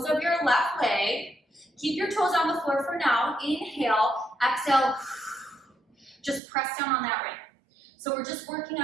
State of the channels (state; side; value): drops out; left; at 6.4 s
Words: of your left leg. Keep your toes on the floor for now. Inhale, exhale, just press down on that ring. So we're just working